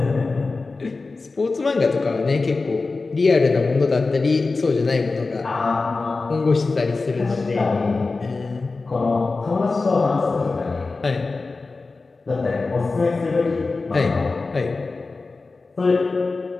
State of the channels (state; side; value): quieter; right; 3.8 dB